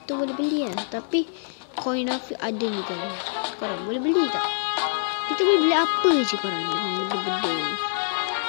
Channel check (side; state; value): right; silent; digital silence